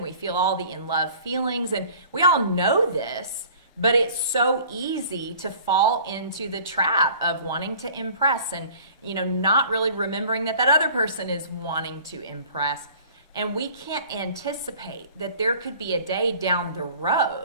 we feel all the in love feelings, and we all know this, but it's so easy to fall into the trap of wanting to impress and, not really remembering that other person is wanting to impress. And we can't anticipate that there could be a day down the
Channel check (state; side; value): inverted; both; correlation -0.49